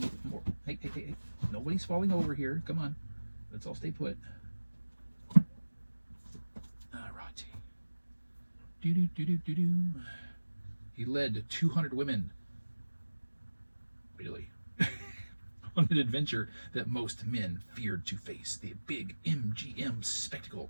more. Hey. Nobody's falling over here. Come on. Let's all stay put. Alright. Do. He led 200 women. Really? On an adventure that most men feared to face. The big MGM spectacle.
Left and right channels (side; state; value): both; inverted; correlation -1.00